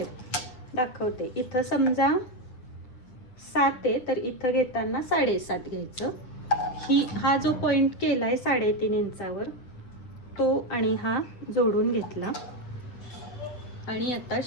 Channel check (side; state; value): right; late; 7.8 ms